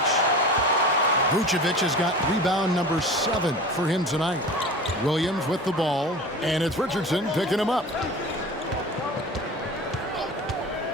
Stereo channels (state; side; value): normal; both; correlation 0.35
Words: Vucevic has got rebound number 7 for him tonight. Williams with the ball. And it's Richardson picking him up.